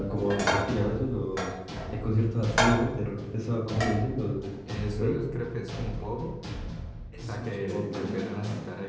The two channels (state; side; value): identical; both; correlation 1.00